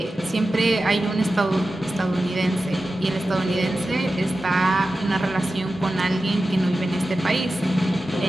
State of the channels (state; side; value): normal; both; correlation 0.93